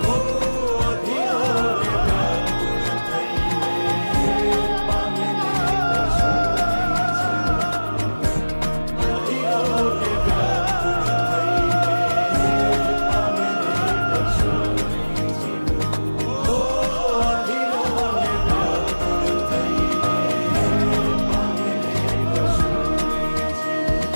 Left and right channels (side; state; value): both; inverted; correlation -1.00